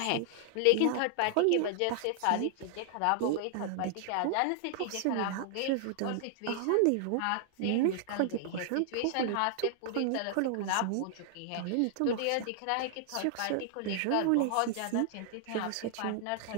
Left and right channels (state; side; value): different; both; correlation 0.00